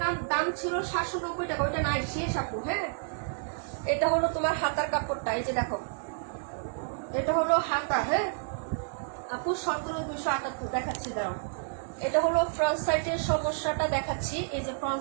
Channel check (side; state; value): left; silent; digital silence